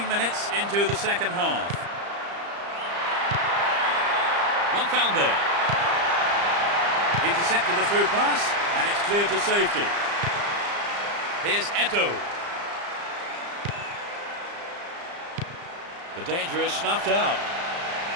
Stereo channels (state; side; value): late; left; 35 ms